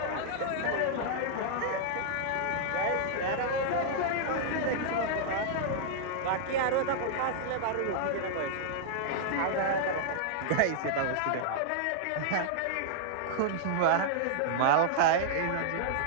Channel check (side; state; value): both; different; correlation -0.01